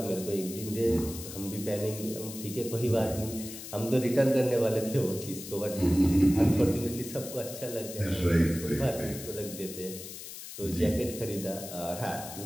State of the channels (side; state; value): left; noise; hiss, 11 dB below the sound